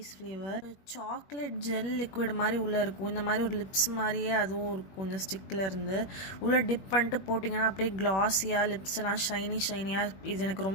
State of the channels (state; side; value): late; right; 21 ms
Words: flavour. Chocolate gel liquid மாதிரி உள்ளே இருக்கும். இந்த மாதிரி ஒரு லிப்ஸ் மாதிரியே அதுவும் இருக்கும். இந்த ஸ்டிக்கில் இருந்து உள்ளே டிப் பண்ணிட்டு போட்டிங்கன்னா அப்படியே க்ளாஸியாக லிப்ஸ் எல்லாம் ஷைனியாக. இது எனக்கு